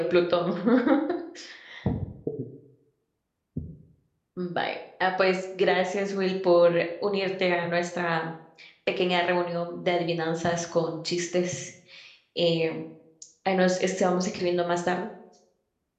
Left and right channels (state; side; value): identical; both; correlation 1.00